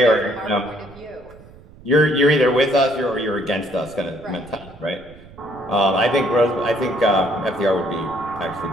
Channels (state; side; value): noise; right; rumble, 21 dB below the sound